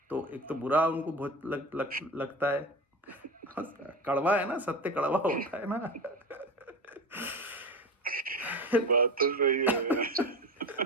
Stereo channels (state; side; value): normal; both; correlation 0.27